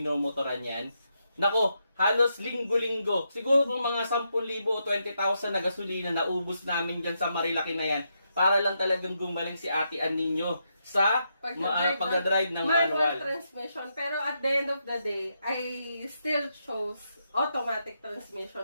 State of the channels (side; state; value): both; inverted; correlation -0.82